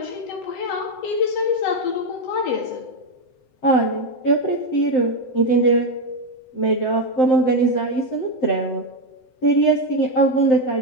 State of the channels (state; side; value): late; right; 7.8 ms